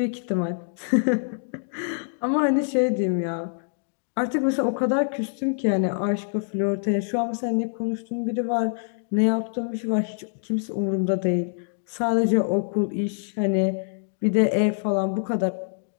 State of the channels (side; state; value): right; silent; digital silence